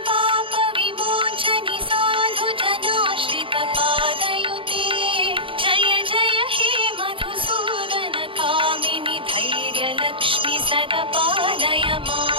पापविमोचनि साधुजनाश्रितपादयुते जय जय हे मधुसूदन कामिनि धैर्यलक्ष्मि सदपालय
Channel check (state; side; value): late; left; 0.25 ms